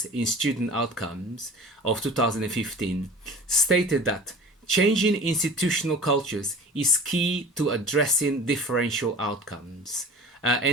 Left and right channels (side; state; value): both; normal; correlation 0.40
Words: in student outcomes of 2015 stated that changing institutional cultures is key to addressing differential outcomes,